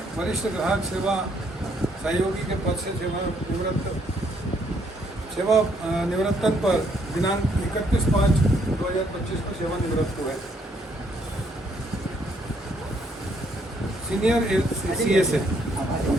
वरिष्ठ ग्राहक सेवा सहयोगी के पद से निवृत्तन पर दिनांक 31/5/2025 को सेवानिवृत्त हुए। सीनियर सीएस है।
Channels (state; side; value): normal; both; correlation 0.70